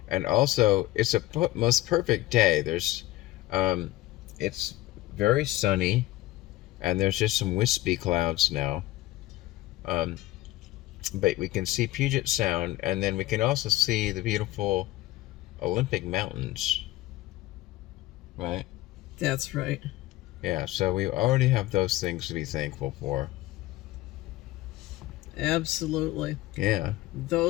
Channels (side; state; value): right; quieter; 16.9 dB